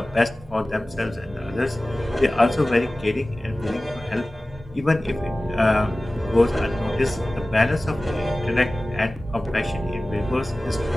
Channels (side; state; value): both; normal; correlation 0.97